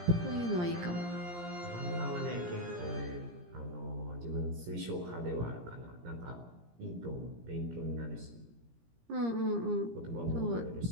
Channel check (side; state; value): left; late; 17 ms